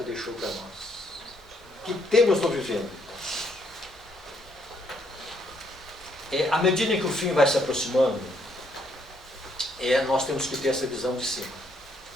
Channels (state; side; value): normal; both; correlation 0.71